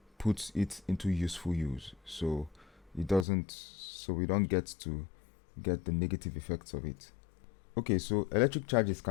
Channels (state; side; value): drops out; right; at 3.2 s